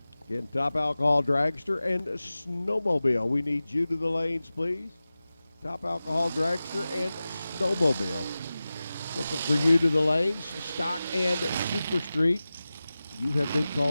Again, Top Alcohol Dragster and Snowmobile. We need you to the lanes, please. Top Alcohol Dragster and Snowmobile. Looking for you to the lanes, Stock and Super Street. You have been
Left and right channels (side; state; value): both; inverted; correlation -0.96